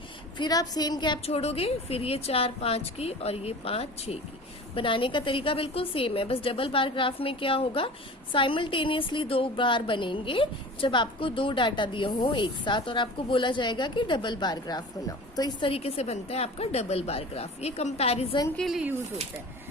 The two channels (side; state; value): both; normal; correlation 0.38